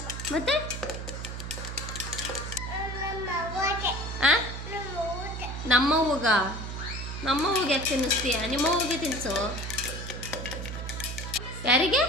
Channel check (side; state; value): right; noise; hum, 7 dB below the sound